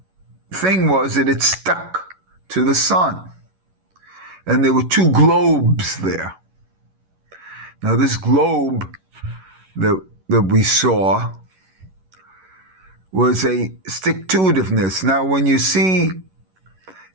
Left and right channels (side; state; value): left; late; 11 ms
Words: thing was that it stuck to the sun. And there were two globes there. Now this globe that we saw was a stick-to-itiveness. Now when you see